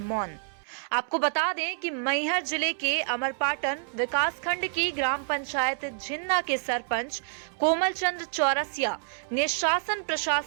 मौन। आपको बता दें कि मैहर जिले के अमरपाटन विकासखंड की ग्राम पंचायत झिन्ना के सरपंच कोमल चंद्र चौरसिया ने शासन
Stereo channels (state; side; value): silent; left; 59 dB below the other